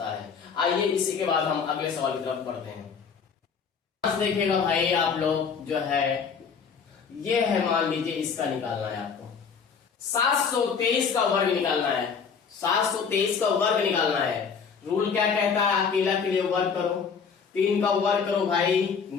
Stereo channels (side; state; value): right; quieter; 6.1 dB